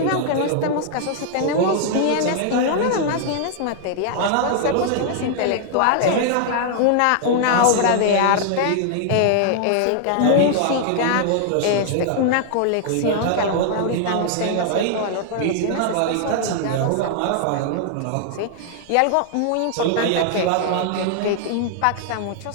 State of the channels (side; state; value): both; different; correlation 0.00